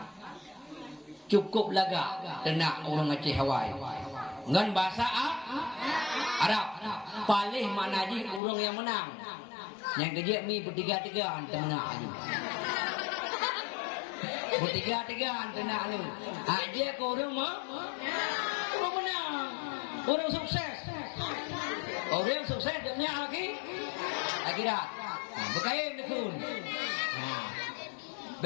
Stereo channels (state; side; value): drops out; right; at 8.4 s